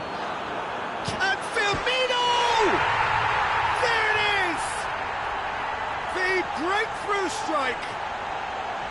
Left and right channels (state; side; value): identical; both; correlation 1.00